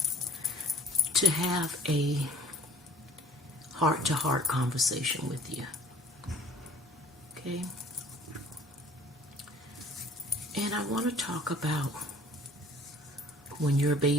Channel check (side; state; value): both; normal; correlation 0.49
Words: to have a heart-to-heart conversation with you. Okay? And I want to talk about when your